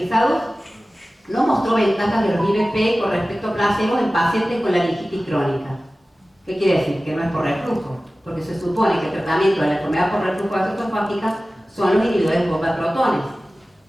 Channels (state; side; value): normal; both; correlation 0.96